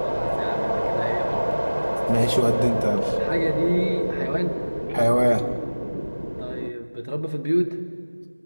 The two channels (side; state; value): both; inverted; correlation -1.00